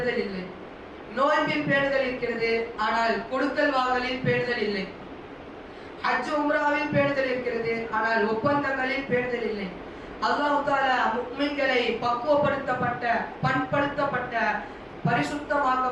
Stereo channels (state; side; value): identical; both; correlation 1.00